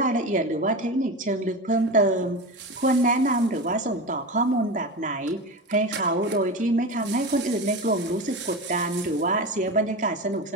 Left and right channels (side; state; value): both; normal; correlation 0.24